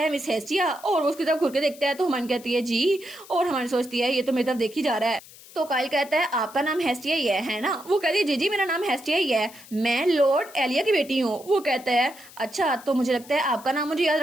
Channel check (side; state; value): left; noise; hiss, 20 dB below the sound